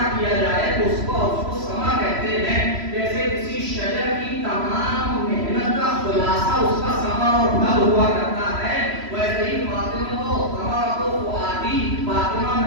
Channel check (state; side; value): late; left; 3.0 ms